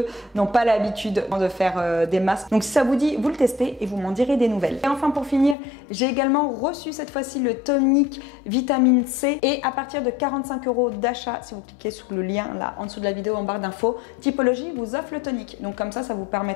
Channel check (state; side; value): drops out; right; at 5.6 s